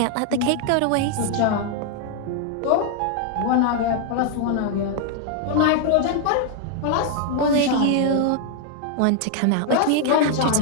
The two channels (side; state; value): both; different; correlation 0.00